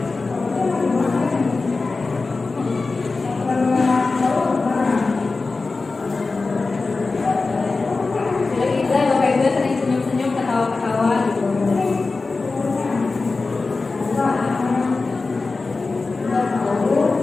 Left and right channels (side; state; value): right; quieter; 3.8 dB